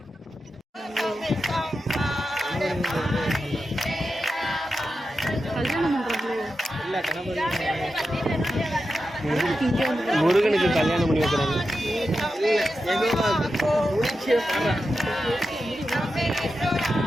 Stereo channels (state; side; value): normal; both; correlation 0.90